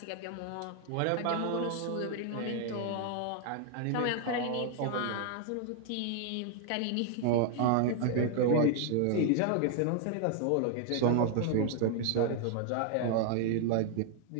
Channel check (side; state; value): both; different; correlation 0.00